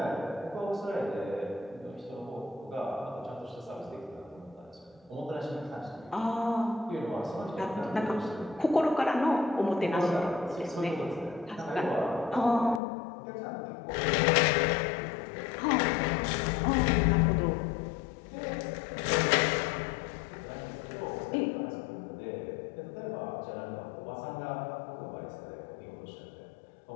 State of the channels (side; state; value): right; drops out; at 12.8 s